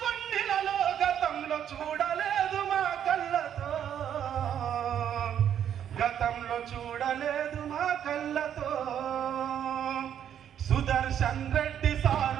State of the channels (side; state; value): left; quieter; 9.5 dB